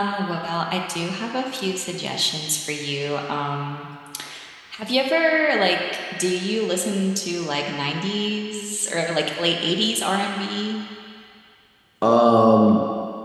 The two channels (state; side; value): identical; both; correlation 1.00